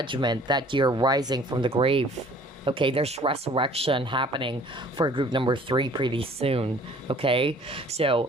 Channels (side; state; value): both; normal; correlation 0.53